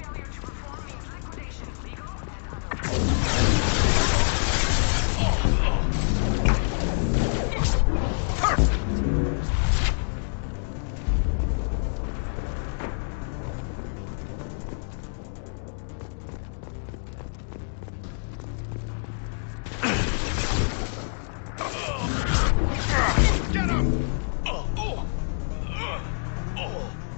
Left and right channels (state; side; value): silent; right; digital silence